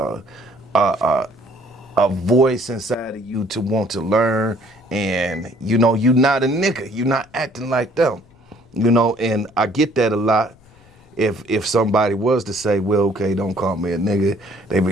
a voice inside of you to want to learn. And, you know, you're not a nigga. You're not acting like them, you know, and I get that a lot. If somebody was to say, well, okay, don't call me a nigga, they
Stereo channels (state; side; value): noise; left; rumble, 28 dB below the sound